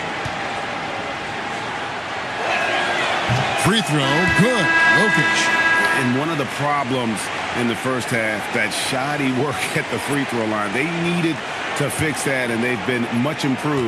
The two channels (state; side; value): identical; both; correlation 1.00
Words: Free throw, good. Jokic. And one of the problems in the first half, that shoddy work at the free throw line. They needed to fix that, and they've been much